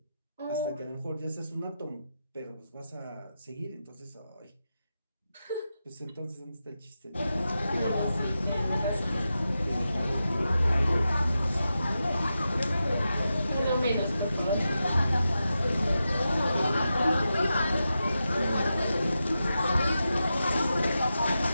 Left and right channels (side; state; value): both; inverted; correlation -0.90